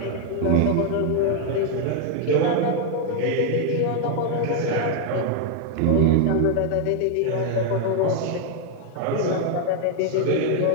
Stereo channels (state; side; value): different; both; correlation 0.00